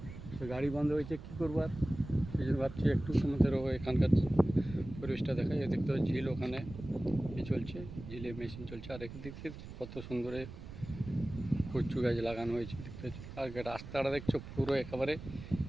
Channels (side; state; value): right; noise; rumble, 12 dB below the sound